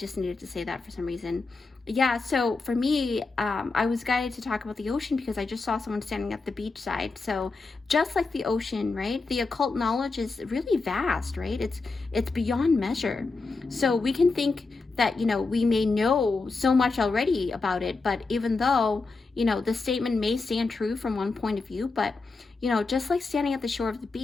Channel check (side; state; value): right; quieter; 3.9 dB